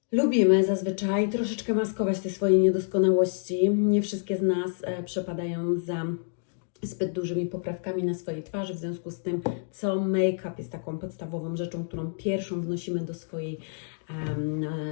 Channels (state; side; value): silent; right; digital silence